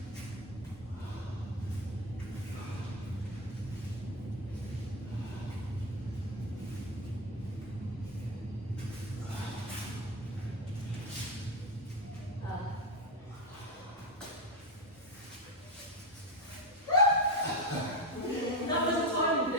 That was a timing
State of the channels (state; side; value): normal; both; correlation 0.14